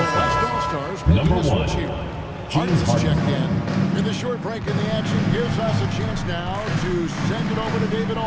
West All-Stars making a switch here. Harden's checked in. And the short break in the action gives us a chance now to send it over to David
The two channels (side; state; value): both; identical; correlation 1.00